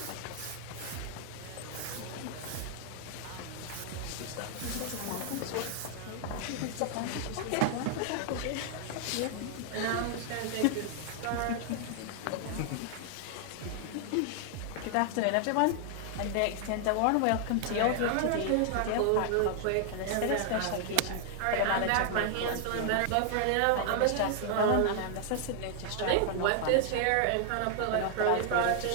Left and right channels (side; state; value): both; different; correlation 0.00